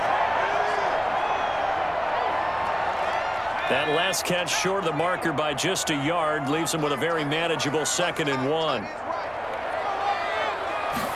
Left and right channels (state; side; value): identical; both; correlation 1.00